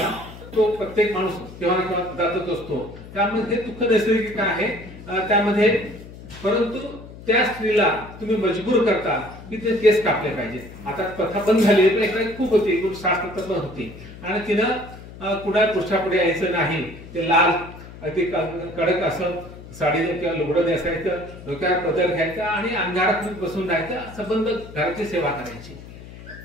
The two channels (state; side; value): noise; left; hum, 16 dB below the sound